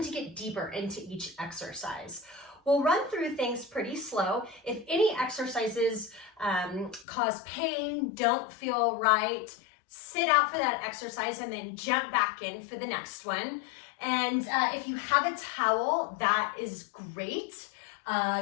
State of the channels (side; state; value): right; drops out; at 7.1 s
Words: to get deeper into each exercise. We'll run through things pretty slow. If any exercises cause pain, don't feel right, sit out for that exercise and then jump back in for the next one. And if you have a towel, that is great.